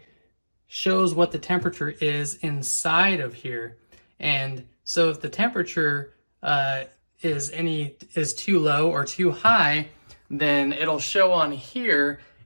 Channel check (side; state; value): both; inverted; correlation -1.00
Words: shows what the temperature is inside of here. And so if the temperature is too low or too high, then it'll show on here,